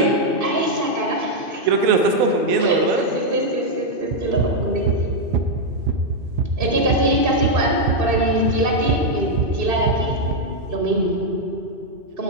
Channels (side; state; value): left; late; 2.6 ms